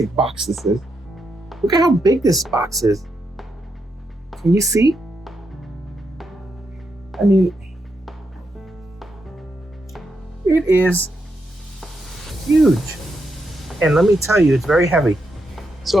box this is. Look at how big this box is. Can you see? I mean, it is huge. And let me tell you, it's very heavy. So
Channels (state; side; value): normal; both; correlation 0.83